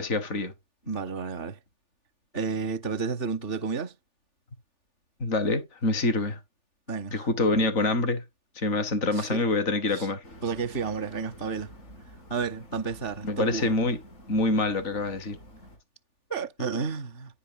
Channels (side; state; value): right; late; 3.4 ms